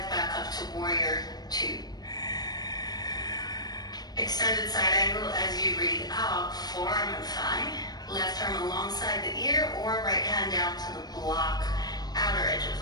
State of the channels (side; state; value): right; late; 0.19 ms